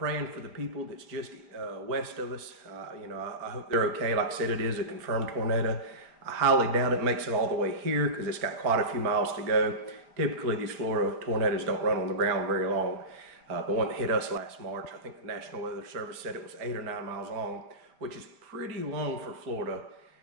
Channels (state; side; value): late; left; 4.5 ms